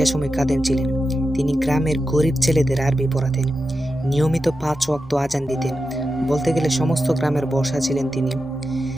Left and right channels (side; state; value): both; normal; correlation 0.90